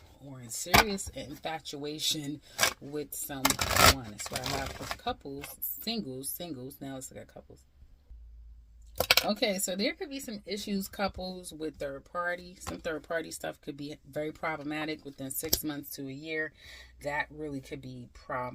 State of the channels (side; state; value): both; identical; correlation 1.00